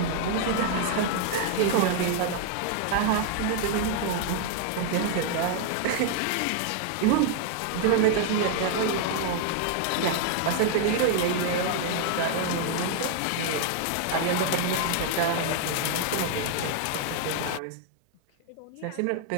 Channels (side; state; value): both; different; correlation 0.00